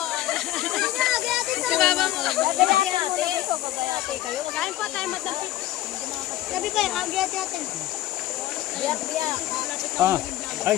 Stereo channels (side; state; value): right; quieter; 14.8 dB